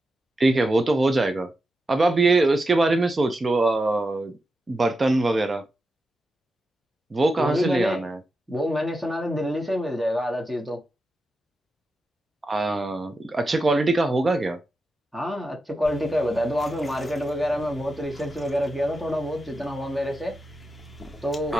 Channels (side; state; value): both; normal; correlation 0.89